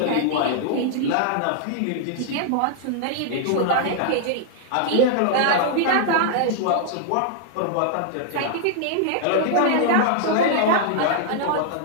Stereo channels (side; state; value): both; different; correlation -0.01